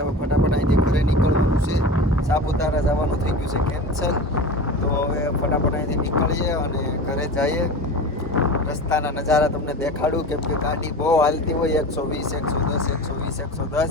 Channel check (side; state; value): both; normal; correlation 0.31